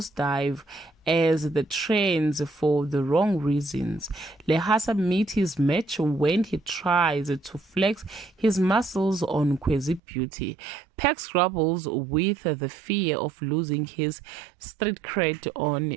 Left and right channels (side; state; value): left; drops out; at 10.0 s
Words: as the trends for the wrong reasons. Lehasa meets his match when he tries to flex his muscles on Kwezi Beauty. Pex grapples with the fear of losing his street cred on